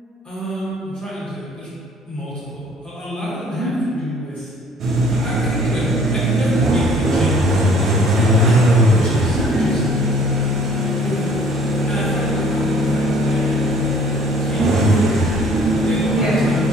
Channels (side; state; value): both; normal; correlation 0.55